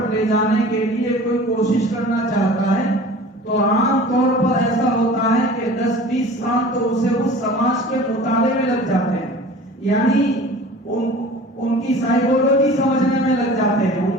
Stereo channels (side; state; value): both; normal; correlation 0.42